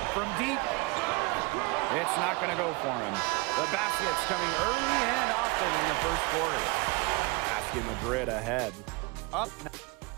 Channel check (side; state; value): left; quieter; 26.9 dB